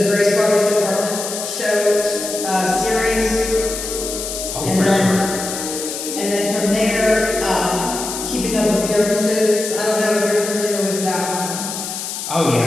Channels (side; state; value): left; noise; hiss, 6 dB below the sound